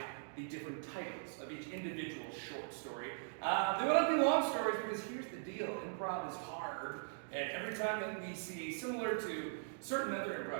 the different titles of each individual short story. They will not be long stories, because here's the deal. Improv is hard, and every time that we see, similar to certain other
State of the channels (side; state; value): left; silent; digital silence